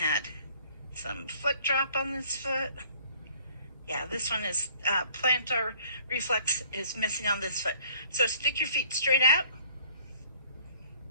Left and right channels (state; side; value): inverted; both; correlation -0.56